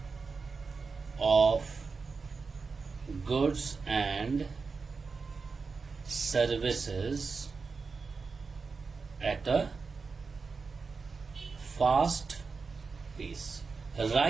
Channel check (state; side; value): quieter; left; 4.6 dB